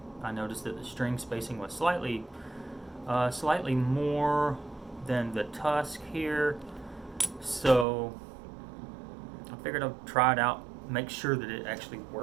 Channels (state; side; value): drops out; left; at 7.9 s